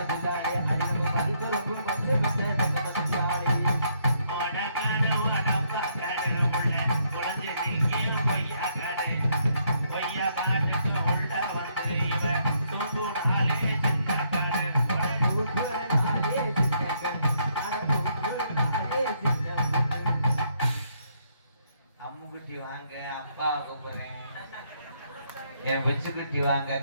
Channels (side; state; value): both; inverted; correlation -0.73